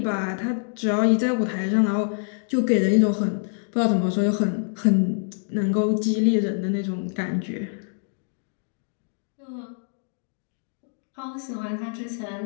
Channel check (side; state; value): right; silent; digital silence